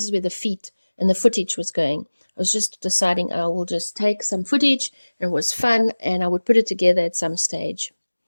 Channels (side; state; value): both; inverted; correlation -1.00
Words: is where the feet and the footage was going. I was just deciding I will just take some footage, and it was fun, and I would put it together at some stage.